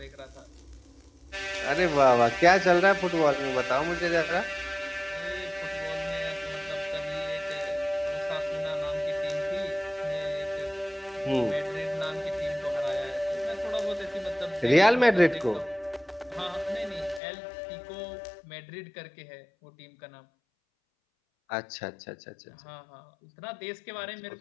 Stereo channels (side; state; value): right; drops out; at 17.2 s